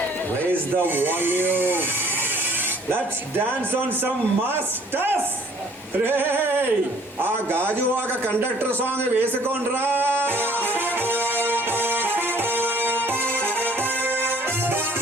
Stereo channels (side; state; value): both; normal; correlation 0.57